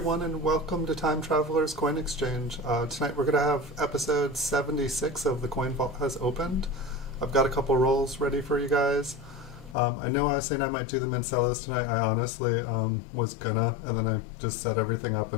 and welcome to Time Traveler's Coin Exchange. Tonight we're going to have episode 76 of The Coin Vault Has Opened. I've got a couple rolls ready for you guys. I know I was saying I might do them in cellos tonight. I honestly was gonna, and then I just set everything up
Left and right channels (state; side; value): drops out; right; at 9.8 s